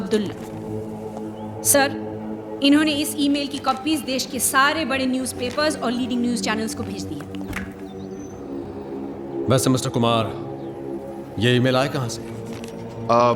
सर, इन्होंने इस ईमेल की कॉपीज देश के सारे बड़े न्यूज़पेपर्स और लीडिंग न्यूज़ चैनल्स को भेज दी है। वैसे मिस्टर कुमार, ये ईमेल आया कहाँ से?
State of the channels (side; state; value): both; identical; correlation 1.00